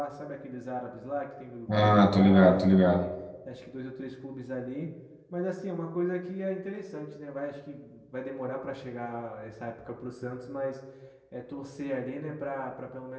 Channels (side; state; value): both; identical; correlation 1.00